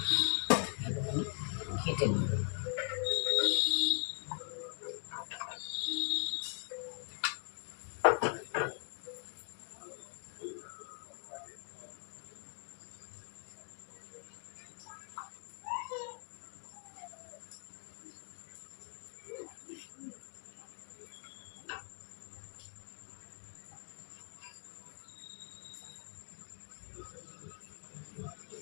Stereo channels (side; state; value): right; silent; 50 dB below the other